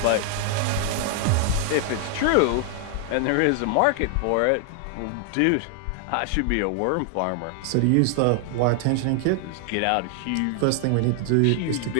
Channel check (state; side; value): different; both; correlation 0.00